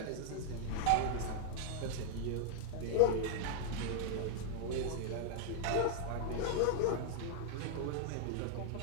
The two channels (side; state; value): both; different; correlation -0.01